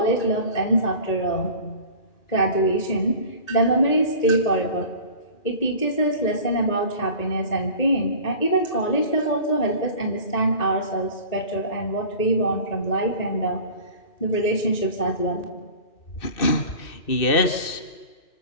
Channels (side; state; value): right; late; 2.6 ms